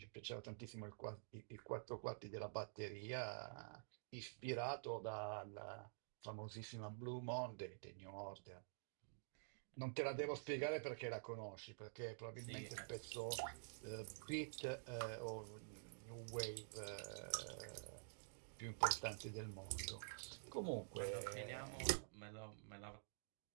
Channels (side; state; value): left; silent; digital silence